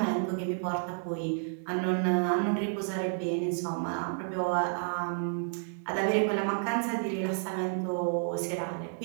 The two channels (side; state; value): left; silent; 57 dB below the other